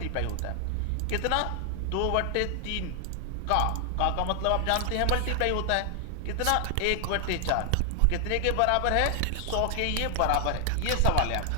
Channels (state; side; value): different; both; correlation 0.00